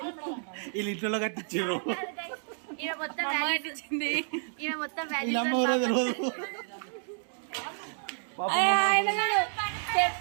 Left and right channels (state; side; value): silent; left; digital silence